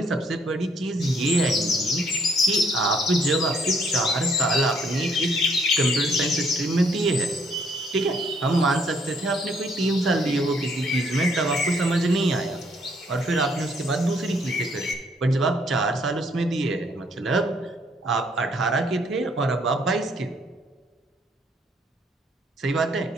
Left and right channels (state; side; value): normal; both; correlation 0.67